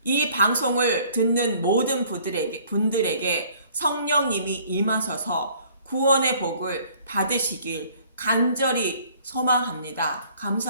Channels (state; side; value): inverted; both; correlation -0.57